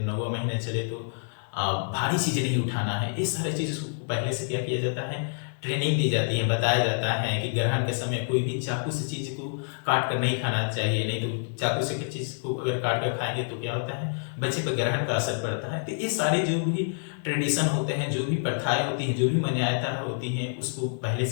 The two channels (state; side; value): silent; right; digital silence